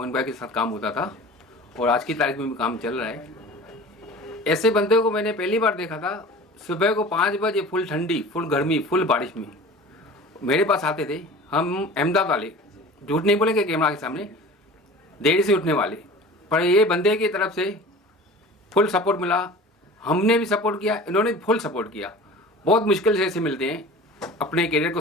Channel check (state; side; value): normal; both; correlation 0.40